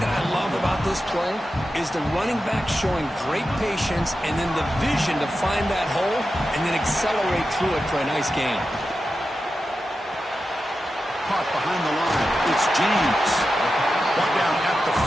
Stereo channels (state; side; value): normal; both; correlation 0.91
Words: that I love about this play is the running back showing great patience and then the vision to find that hole and then accelerate through it for a nice gain. Caught behind the line. It's James. Brought down at the